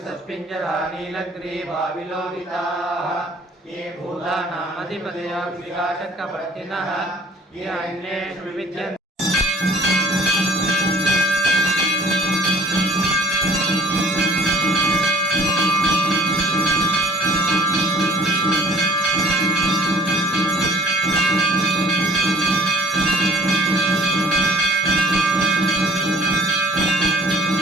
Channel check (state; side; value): normal; both; correlation 0.53